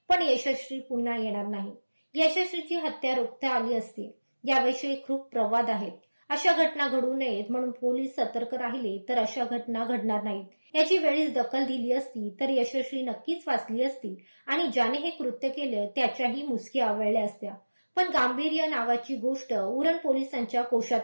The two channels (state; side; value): inverted; both; correlation -1.00